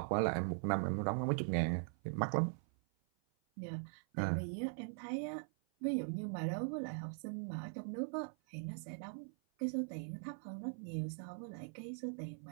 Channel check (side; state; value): left; silent; 50 dB below the other